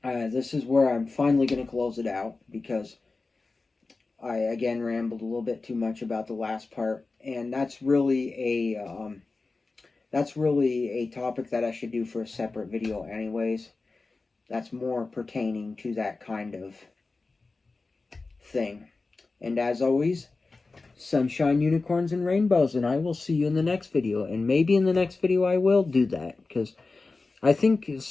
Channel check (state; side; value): quieter; right; 3.7 dB